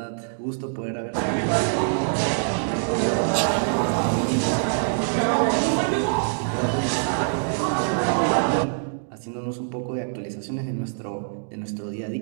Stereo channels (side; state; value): left; silent; digital silence